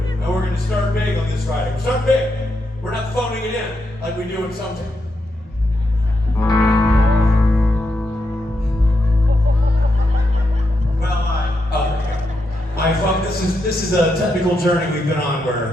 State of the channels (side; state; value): both; normal; correlation 0.83